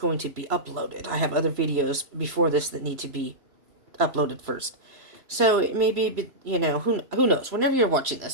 to be uploaded. I have other videos before this that need to be uploaded first. So it may be, who knows? Whenever you're watching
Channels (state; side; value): late; left; 3.0 ms